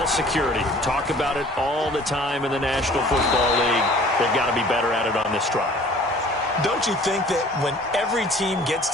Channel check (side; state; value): both; normal; correlation 0.50